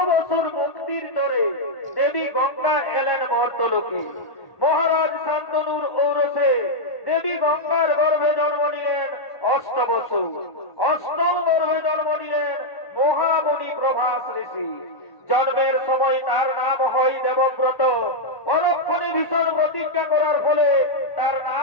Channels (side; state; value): right; late; 1.1 ms